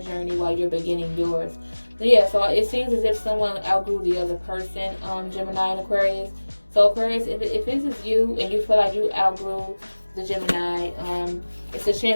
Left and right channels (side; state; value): both; inverted; correlation -1.00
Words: while you're beginning yours. But yeah, so it seems as if someone outgrew the other person, Gemini and Aquarius. So Aquarius, if this is you and you feel like you outgrew the Gemini, it's a